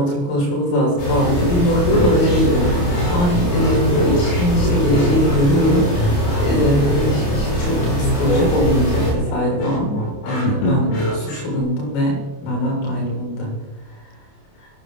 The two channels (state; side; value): late; right; 28 ms